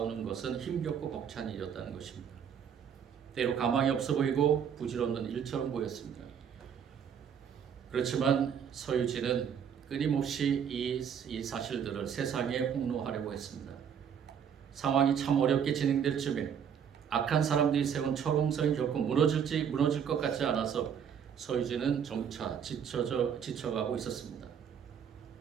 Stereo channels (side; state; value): left; quieter; 7.9 dB